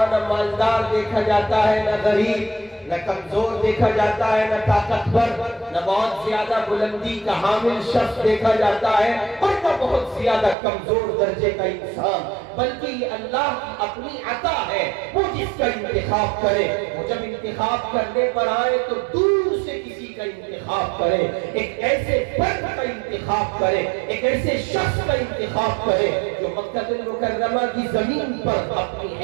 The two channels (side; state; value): left; drops out; at 10.6 s